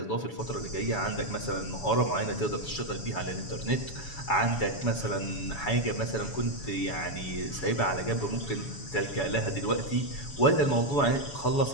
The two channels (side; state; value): right; late; 7.1 ms